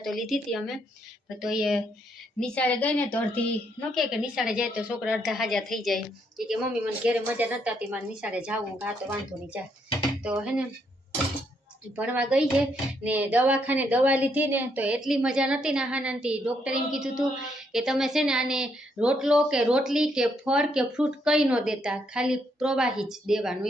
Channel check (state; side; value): normal; both; correlation 0.74